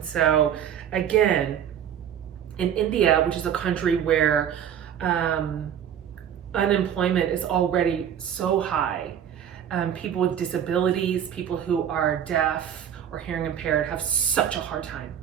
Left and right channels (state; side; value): quieter; left; 9.3 dB